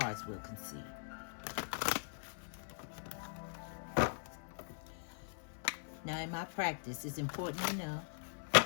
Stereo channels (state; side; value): silent; right; 50 dB below the other